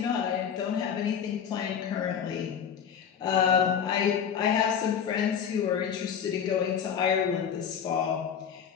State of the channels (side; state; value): right; quieter; 7.9 dB